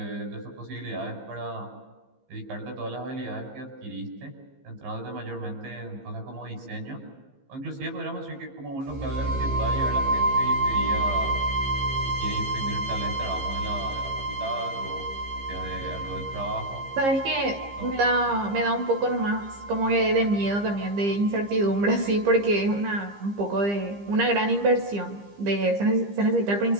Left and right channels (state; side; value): late; left; 15 ms